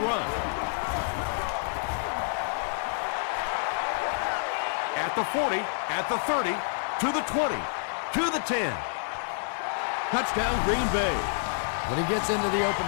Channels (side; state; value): right; silent; 59 dB below the other